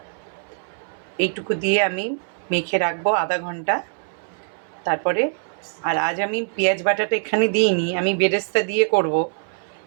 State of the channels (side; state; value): left; silent; 61 dB below the other